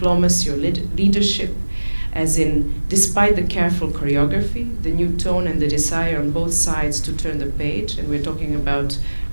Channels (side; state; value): both; inverted; correlation -1.00